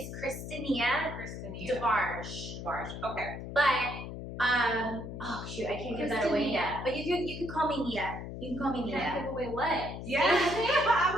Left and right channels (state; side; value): noise; left; hum, 8 dB below the sound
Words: Kristinia Debarge. Okay. But oh shoot, I can't give that away yet. But you can call me Nia. You can call me Nia. Can't give away what? Yeah.